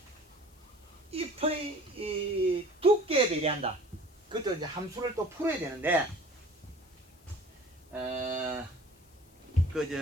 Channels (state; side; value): noise; left; hiss, 29 dB below the sound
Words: 잎의 이 두께에 비례한다. 그것도 이제 함수를 또 풀어야 되는데